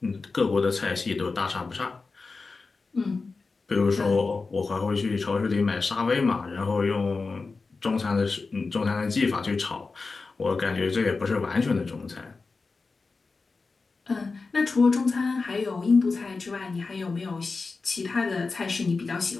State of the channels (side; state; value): right; quieter; 4.1 dB